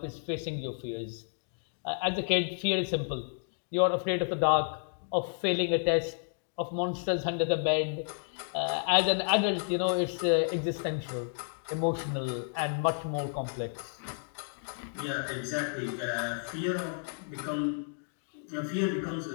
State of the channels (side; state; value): right; silent; digital silence